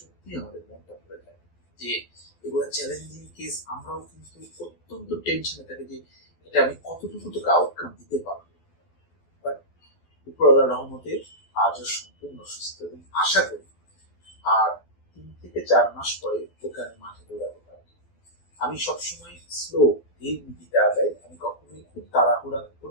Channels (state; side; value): late; right; 12 ms